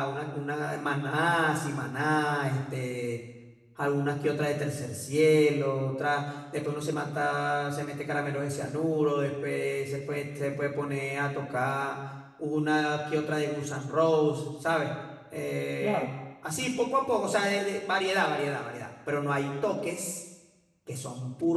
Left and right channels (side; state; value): both; identical; correlation 1.00